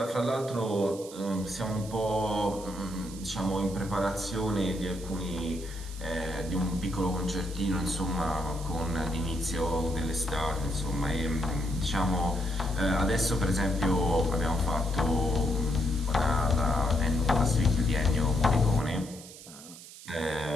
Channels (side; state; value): right; noise; hiss, 16 dB below the sound